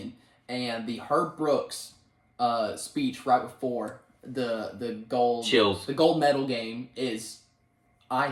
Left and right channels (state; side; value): identical; both; correlation 1.00